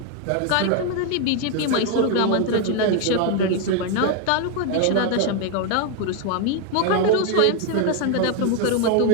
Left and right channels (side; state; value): both; different; correlation 0.01